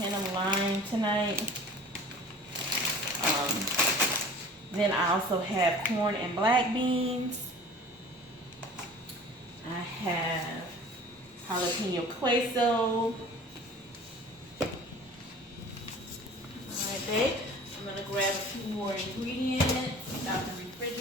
of lime tonight. Then I also have corn and black beans. I have jalapeno queso. Alright, babe. I'm going to grab a few more ingredients out the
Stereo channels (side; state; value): both; normal; correlation 0.44